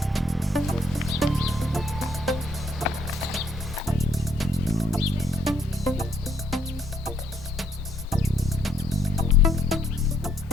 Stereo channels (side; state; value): both; normal; correlation 0.69